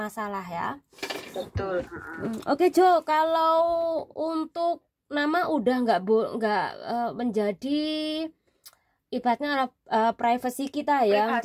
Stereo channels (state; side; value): identical; both; correlation 1.00